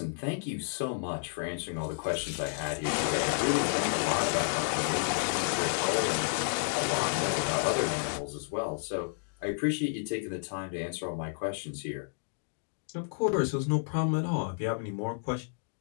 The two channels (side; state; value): right; silent; digital silence